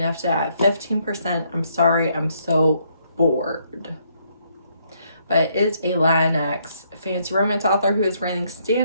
it at 15%. I'm sorry, I'm so bored. But it is a Latinx fantasy romance author who is writing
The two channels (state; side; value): inverted; both; correlation -0.71